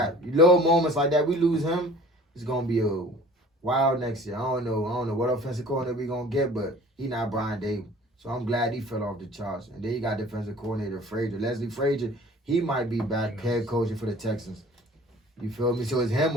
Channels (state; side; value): normal; both; correlation 0.47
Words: Little moments like that, we lose him, it's going to be a wild next year. I don't know what offensive coordinator we going to get, but he not Brian Dable. So I'm glad he fell off the charts. And then you got defensive coordinator Frazier. Leslie Frazier, he might be back head coaching for the Texans. You feel me? So it's